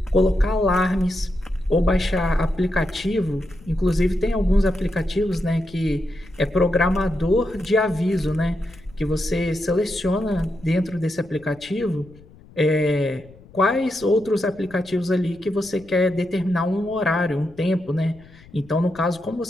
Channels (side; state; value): left; noise; rumble, 23 dB below the sound